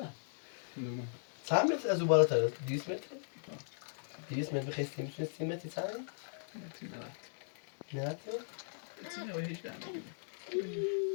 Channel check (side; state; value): right; silent; digital silence